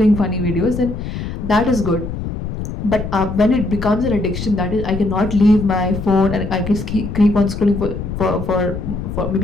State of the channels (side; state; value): left; noise; rumble, 6 dB below the sound